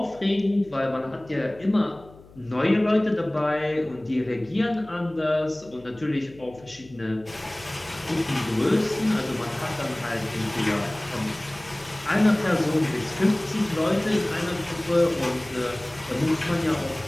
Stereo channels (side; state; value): left; noise; hum, 23 dB below the sound